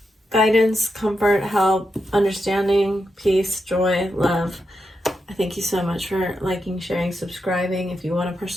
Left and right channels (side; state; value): both; normal; correlation 0.86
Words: guidance, comfort, help, understanding, peace, joy, love. I thank you so much for liking, sharing, subscribing. If you want a